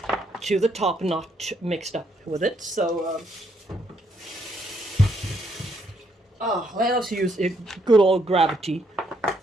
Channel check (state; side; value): normal; both; correlation 0.73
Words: to the top, not mixed up with it. So, let us use a good old gravity.